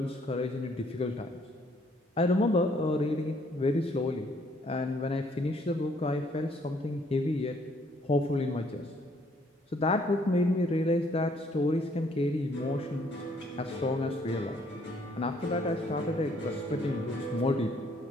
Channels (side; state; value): both; normal; correlation 0.65